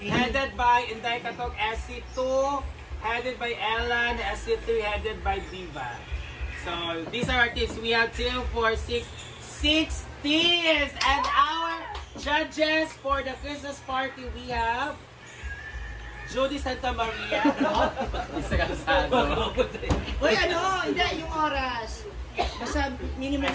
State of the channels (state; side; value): identical; both; correlation 1.00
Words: headed by Inday Katok, SC2, headed by Ellen, SC3, headed by Diva. So, these are our teams. We have 2, 4, 6 teams! And our judges for the Christmas party, we have Jody Santa Maria. Isa ka sa ano. Uy, ano? Hindi, yung oras. Basta minimum